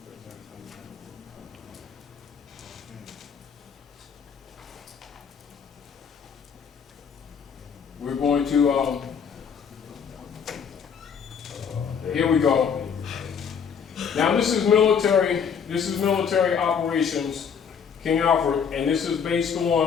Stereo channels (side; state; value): right; quieter; 6.9 dB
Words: We're going to, here we go. Now this is military operations, King Alfred, and this is based